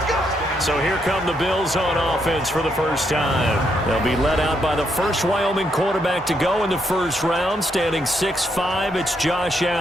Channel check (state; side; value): normal; both; correlation 0.77